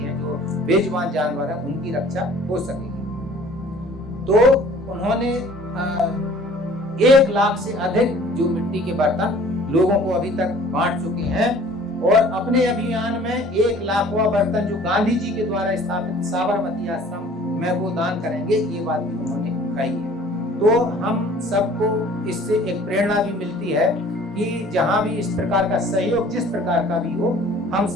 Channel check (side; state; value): both; normal; correlation 0.51